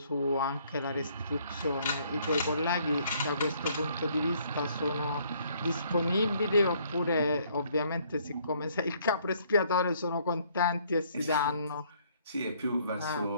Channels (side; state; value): both; inverted; correlation -0.64